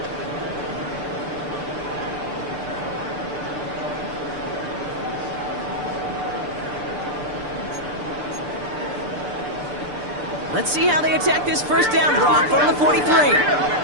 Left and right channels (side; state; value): left; late; 6.8 ms